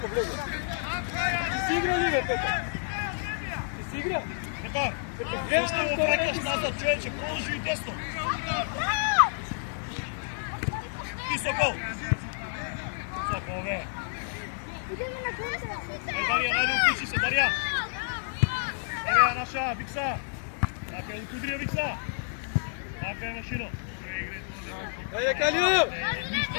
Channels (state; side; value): silent; right; digital silence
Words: Blego. Ti si igrao li, Petar? Ti si igrao? Петар, зашто го враќаш назад, човече, продолжи и десно. И Сокол. Сокол, бе. Идеме на контра! Дарјан, ајде укуши се, Дарјан. Ева наша, Викса. Така е, Кудрија Викса. Така е, Машино. Ajde, Kalijo.